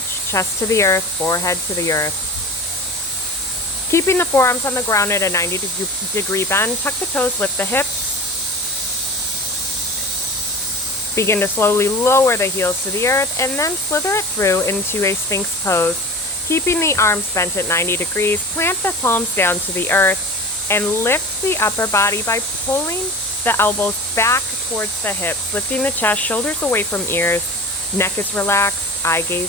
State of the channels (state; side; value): normal; both; correlation 0.34